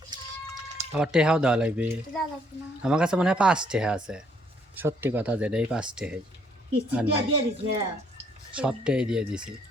আবার টেহাও দেওয়া লাগবে, দাও লাগবে না। আমার কাছে মনে হয় 5 টেহা আছে, সত্যি কথা যেটা, এই 5 টেহাই কিস্তি দিয়ে দিছে। সবটাই দিয়ে দিছি,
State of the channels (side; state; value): both; normal; correlation 0.67